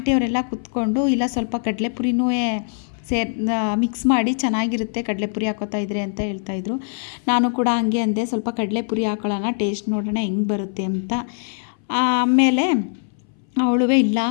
ಕುತ್ಕೊಂಡು, ಇಲ್ಲ ಸ್ವಲ್ಪ ಕಡಲೆಪುರಿನೂ ಮಿಕ್ಸ್ ಮಾಡಿ ಚೆನ್ನಾಗಿರುತ್ತೆ ಕಡಲೆಪುರಿ ಹಾಕೋತಾ ಇದ್ರೆ ಅಂತ ಹೇಳ್ತಾಯಿದ್ರು. ನಾನು ಕೂಡ ಹಂಗೆ ಅಂದೆ, ಸ್ವಲ್ಪ ಕಡಲೆಪುರಿ ಹಾಕೊಳ್ಳೋಣ, ಟೇಸ್ಟ್ ನೋಡೋಣ ಹೆಂಗೆ ಬರುತ್ತೆ ಅಂತ. ಆಮೇಲೆ ಅವಳುವೇ ಇಲ್ಲ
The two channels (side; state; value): right; silent; 60 dB below the other